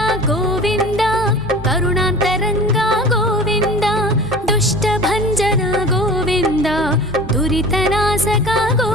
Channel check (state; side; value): normal; both; correlation 0.39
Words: ಗೋವಿಂದ, ಕರುಣಾಂತರಂಗ ಗೋವಿಂದ, ದುಷ್ಟ ಭಂಜನ ಗೋವಿಂದ, ದುರಿತನಾಶಕ